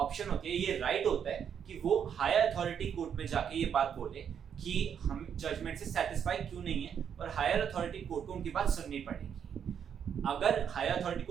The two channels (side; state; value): left; quieter; 8.1 dB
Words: होती है, ये राइट होता है कि वो हायर अथॉरिटी कोर्ट में जाके ये बात बोले कि हम जजमेंट से सेटिस्फाई क्यों नहीं है और हायर अथॉरिटी कोर्ट को उनकी बात सुननी पड़ेगी। अगर हायर अथॉरिटी